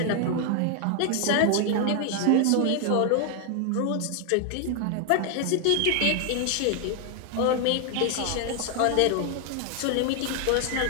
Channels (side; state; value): both; different; correlation 0.00